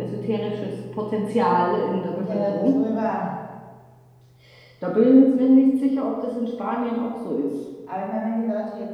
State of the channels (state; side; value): identical; both; correlation 1.00